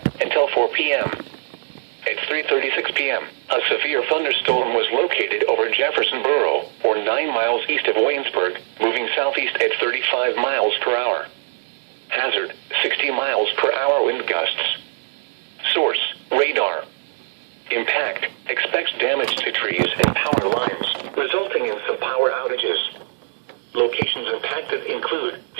until 4 p.m. At 3:36 p.m., a severe thunderstorm was located over Jefferson Borough, or 9 miles east of Waynesburg, moving southeast at 35 miles per hour. Hazard, 60 miles per hour wind gusts. Source, radar. Impact, expects damage to trees and power lines, resulting in some power outages. Locations impacted include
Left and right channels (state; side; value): silent; left; digital silence